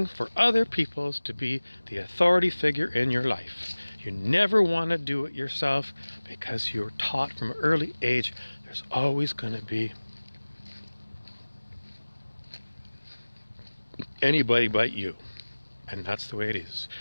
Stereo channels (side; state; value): both; inverted; correlation -1.00